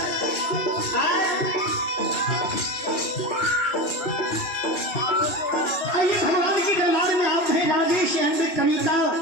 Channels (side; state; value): right; late; 2.7 ms